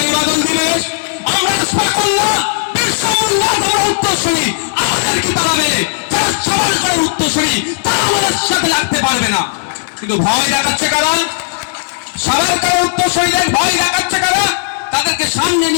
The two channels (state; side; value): silent; right; digital silence